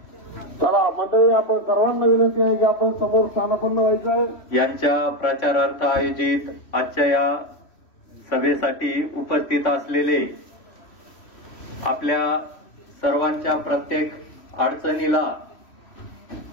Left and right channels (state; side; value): late; right; 3.1 ms